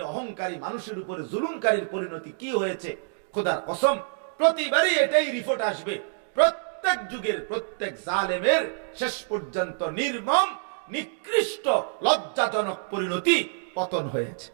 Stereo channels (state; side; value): silent; left; digital silence